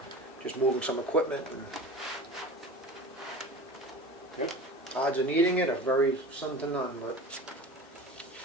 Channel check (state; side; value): normal; both; correlation 0.36